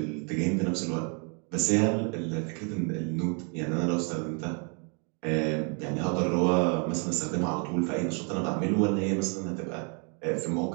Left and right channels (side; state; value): left; quieter; 37.6 dB